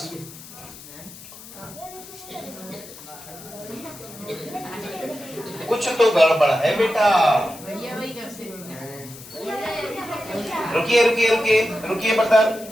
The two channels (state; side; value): noise; left; hiss, 16 dB below the sound